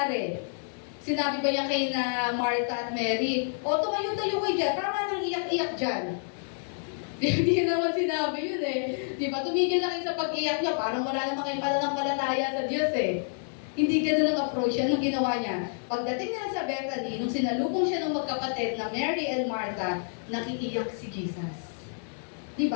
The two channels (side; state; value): right; silent; 58 dB below the other